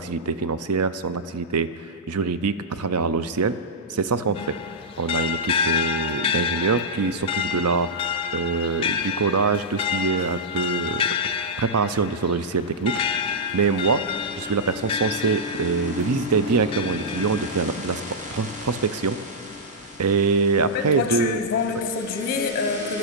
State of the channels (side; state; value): both; normal; correlation -0.10